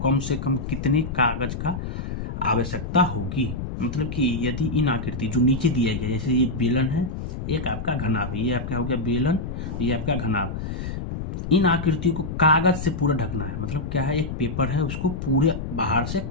कम से कम कितने कागज का आवश्यकता होगी। मतलब कि यदि इन आकृति जो नीचे दिया गया, जैसे ये बेलन है, एक आपका घनाभ है, ये आपका हो गया बेलन, ये आपका घनाभ, इन आकृतियों को कागज से पूरा ढकना है। मतलब क्या है, एक पेपर है उसको पूरे बाहर से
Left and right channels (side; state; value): left; noise; rumble, 6 dB below the sound